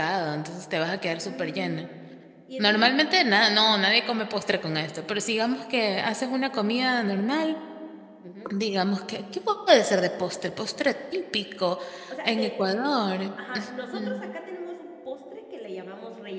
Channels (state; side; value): identical; both; correlation 1.00